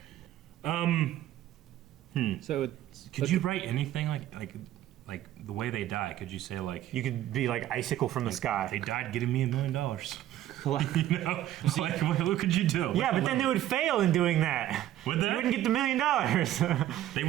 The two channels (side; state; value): left; quieter; 13.1 dB